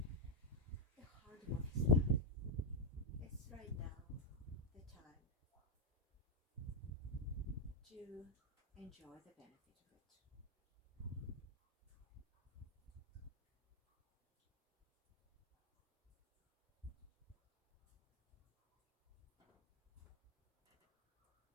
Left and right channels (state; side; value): normal; both; correlation 0.02